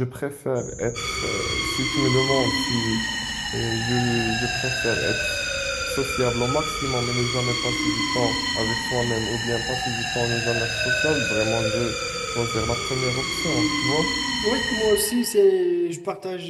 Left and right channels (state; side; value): identical; both; correlation 1.00